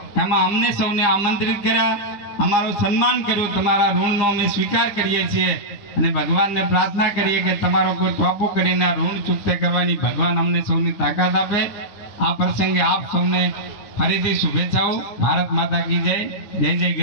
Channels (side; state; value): right; late; 9.9 ms